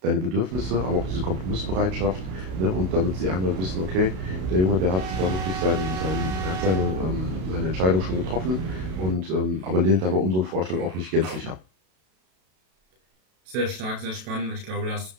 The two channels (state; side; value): late; left; 32 ms